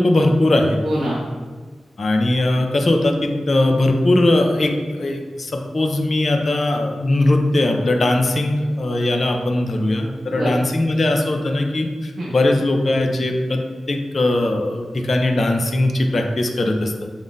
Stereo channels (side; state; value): both; normal; correlation 0.95